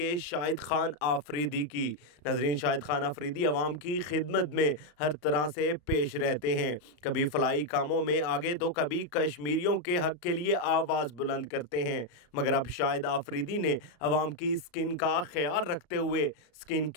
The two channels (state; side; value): late; right; 34 ms